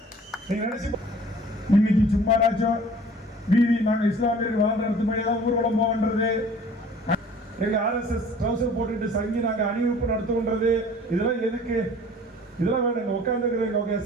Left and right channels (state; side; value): normal; both; correlation 0.49